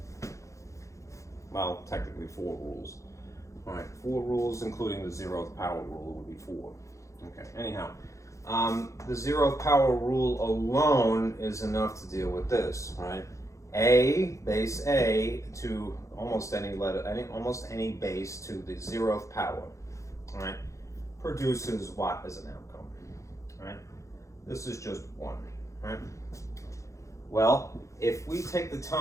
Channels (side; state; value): right; late; 0.15 ms